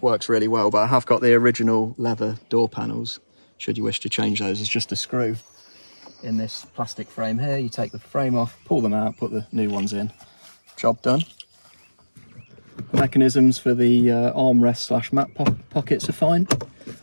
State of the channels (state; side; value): inverted; both; correlation -1.00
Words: works really well, but I have got the original leather door panels, should you wish to change those. It's just a screw in this plastic frame here. You take the frame off, pull them out, put the new ones in. Job done. The mechanisms for the armrest / mat pockets are fine.